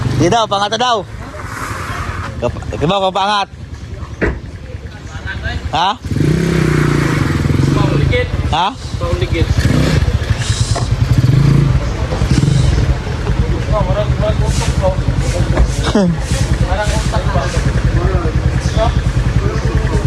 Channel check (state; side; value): identical; both; correlation 1.00